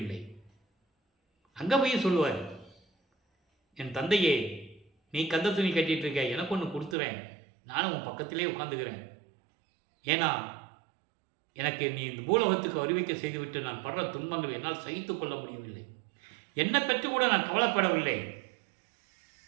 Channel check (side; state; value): left; drops out; at 7.0 s